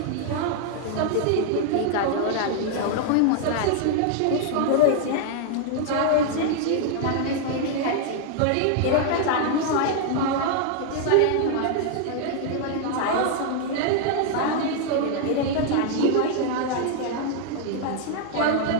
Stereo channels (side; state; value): both; different; correlation 0.00